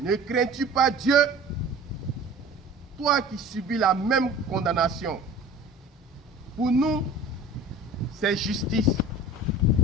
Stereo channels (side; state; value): both; normal; correlation 0.41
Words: ne crains-tu pas Dieu, toi qui subis la même condamnation? Pour nous, c'est justice,